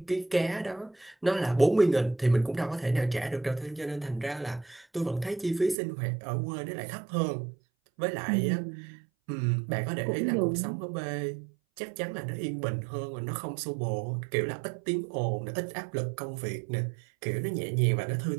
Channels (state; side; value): drops out; left; at 5.8 s